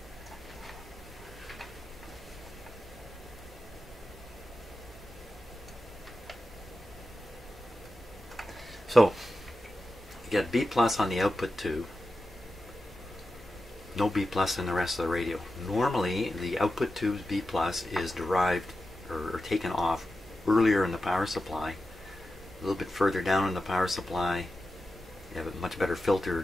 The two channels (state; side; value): normal; both; correlation 0.92